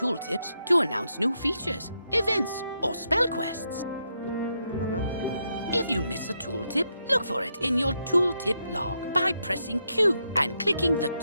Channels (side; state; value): both; inverted; correlation -0.81